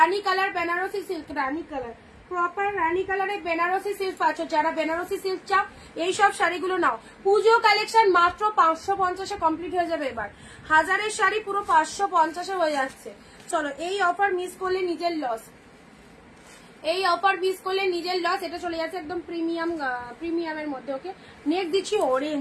কালার, বেনারসি সিল্ক, রানী কালার, প্রপার রানী কালারে বেনারসি সিল্ক পাচ্ছ। যারা বেনারসি সিল্ক চাও এইসব শাড়িগুলো নাও। পুজো কালেকশন মাত্র 550-এ কমপ্লিট হয়ে যাবে। এবার 1000-এর শাড়ি পুরো 550-এ হয়ে যাচ্ছে। চলো এই অফার মিস করলে নিজের লস, এই অফার মিস করলে নিজের লস। এটা চলে যাচ্ছে একদম প্রিমিয়ামের মধ্যে। ওকে, নেক্সট দিচ্ছি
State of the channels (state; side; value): identical; both; correlation 1.00